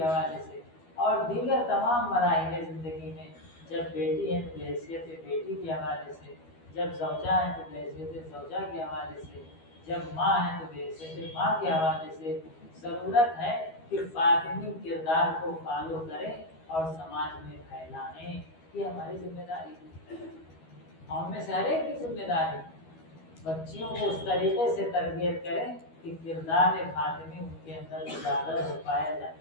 حوالے سے اور دیگر تمام مراحل زندگی میں جب بیٹی ہے تو بحیثیت بیٹی کے حوالے سے، جب زوجہ ہے تو بحیثیت زوجہ کے حوالے سے، جب ماں ہے تو بحیثیت ماں کے حوالے سے ضرورت ہے کہ فاطمی کردار کو فالو کریں اور سماج میں پھیلائیں. یہ ہماری ذمہ داری ہے، ہم میں سے ہر ایک کی ذمہ داری. بچیوں کو اس طریقے سے تربیت کریں کہ کردار فاطمی ان کے اندر اجاگر ہو پایا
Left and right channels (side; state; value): right; late; 12 ms